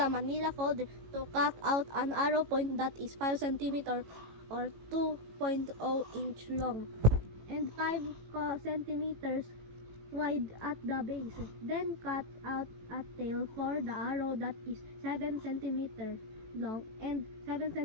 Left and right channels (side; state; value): left; late; 18 ms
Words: Manila folder to cut out an arrow point that is 5 cm or 2.0 inch long and 5 centimeters wide at the base. Then cut out a tail for the arrow that is 7 cm long and 7